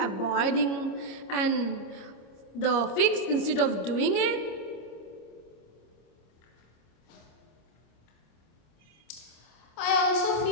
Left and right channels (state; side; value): late; right; 26 ms